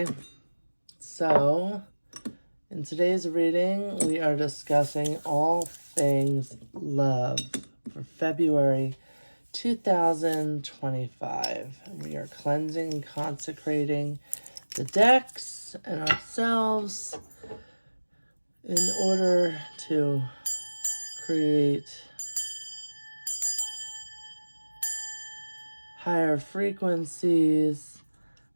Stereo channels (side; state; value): both; inverted; correlation -1.00